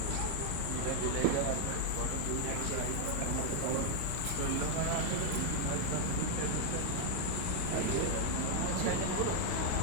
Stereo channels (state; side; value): different; both; correlation 0.00